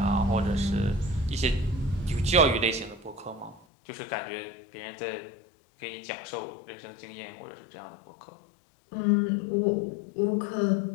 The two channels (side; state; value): right; drops out; at 3.7 s